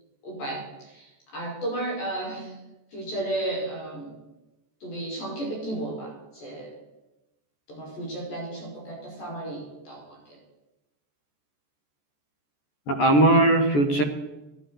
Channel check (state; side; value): late; right; 14 ms